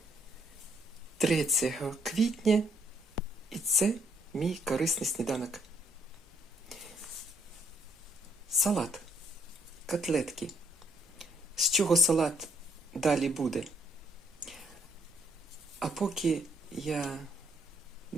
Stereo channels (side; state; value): both; normal; correlation 0.69